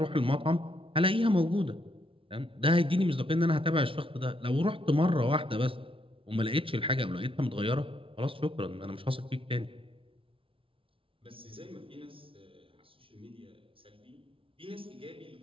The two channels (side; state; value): left; late; 0.26 ms